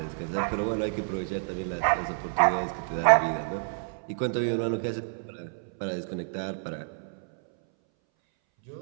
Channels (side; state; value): left; silent; 59 dB below the other